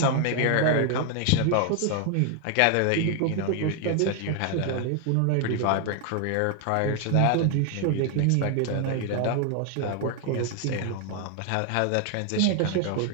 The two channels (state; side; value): different; both; correlation 0.01